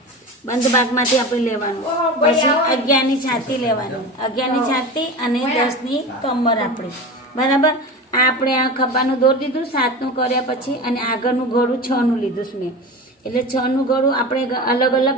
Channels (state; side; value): normal; both; correlation 0.29